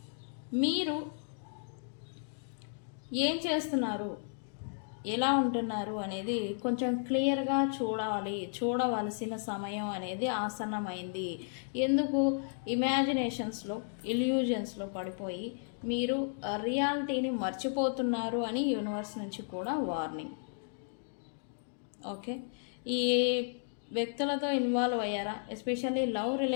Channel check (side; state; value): right; silent; digital silence